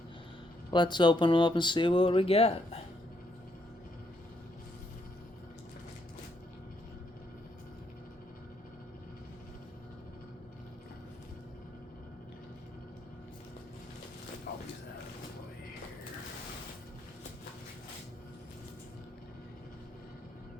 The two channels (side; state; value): both; normal; correlation 0.74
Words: Let's open them up and see what we got.